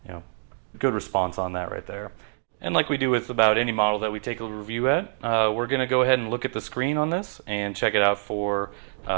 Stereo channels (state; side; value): silent; left; digital silence